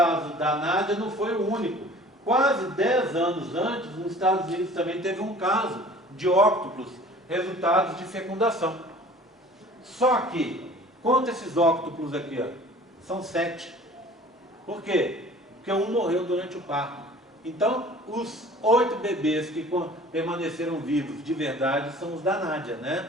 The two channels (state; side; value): normal; both; correlation 0.47